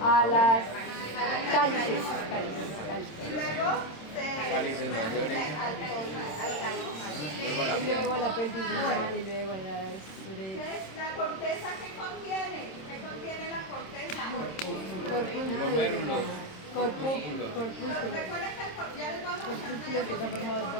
A las cálices. Y luego se Cálices mayores. al Luego la Y luego a la pelvis renal y luego a las Entonces, ¿la corteza qué contiene? ¿Qué contiene la corteza? Glomérulos. corpúsculos. Recuerden que ya les vamos a Corpúsculos que están formados por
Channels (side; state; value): right; late; 26 ms